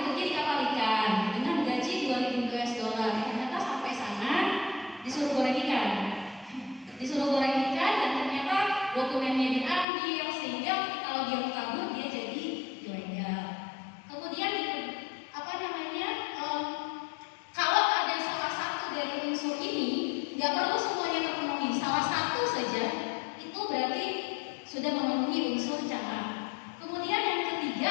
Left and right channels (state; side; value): drops out; right; at 9.9 s